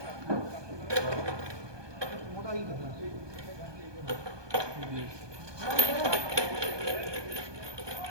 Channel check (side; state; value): left; late; 1.2 ms